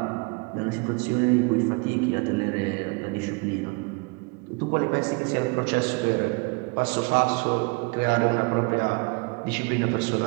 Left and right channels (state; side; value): quieter; left; 30.5 dB